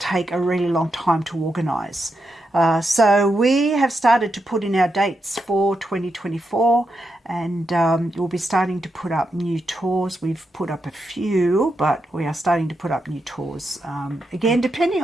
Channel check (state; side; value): normal; both; correlation 0.85